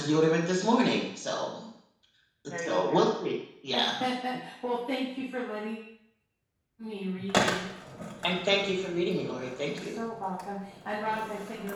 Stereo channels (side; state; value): both; identical; correlation 1.00